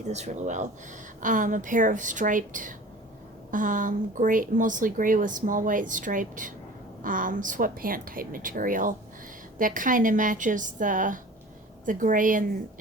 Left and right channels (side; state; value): both; normal; correlation 0.42